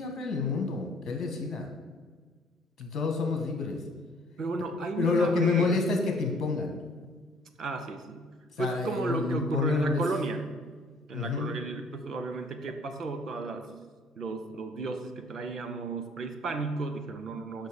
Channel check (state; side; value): normal; both; correlation 0.57